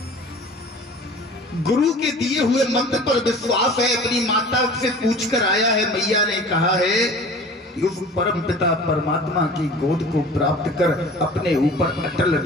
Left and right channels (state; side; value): normal; both; correlation 0.43